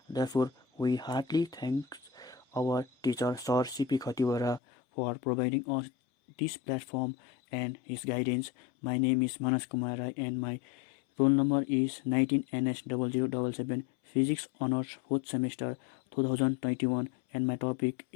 Therefore, we heartily thank our teacher Sir C.P. Khatiwara for providing us this platform and his guidance. My name is Manas Kumar Rai and my roll number is 19NS0077, Physics Honors 4th Semester 2021, and my topic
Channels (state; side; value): drops out; right; at 4.6 s